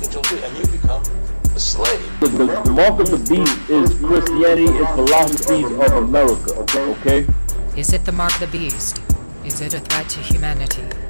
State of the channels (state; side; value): inverted; both; correlation -1.00